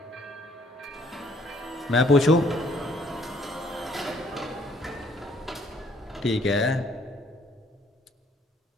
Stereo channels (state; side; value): normal; both; correlation 0.63